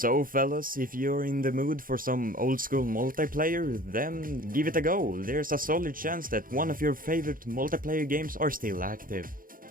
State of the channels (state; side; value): late; left; 0.41 ms